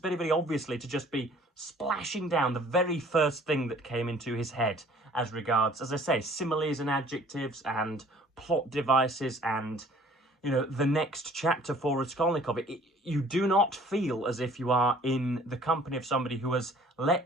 obviously to just be splashing down the very first thing that came into his head as regards, as I say, similes and adjectives and plot devices and, you know, the next chapter for Raskolnikov. You do not feel as if you are in the company of somebody who has let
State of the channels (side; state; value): both; normal; correlation 0.54